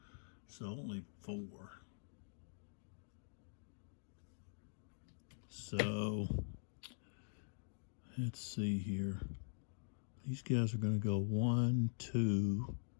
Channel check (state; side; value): silent; right; digital silence